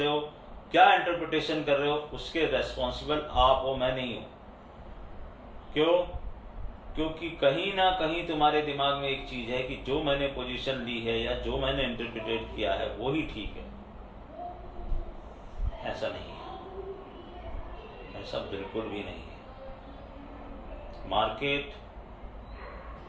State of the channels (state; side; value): identical; both; correlation 1.00